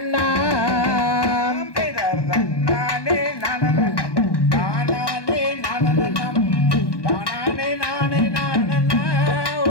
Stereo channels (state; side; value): late; right; 1.2 ms